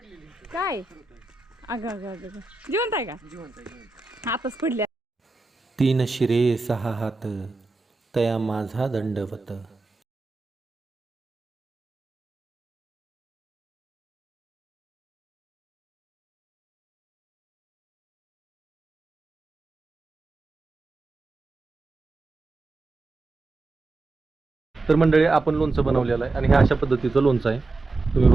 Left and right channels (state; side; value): quieter; left; 3.4 dB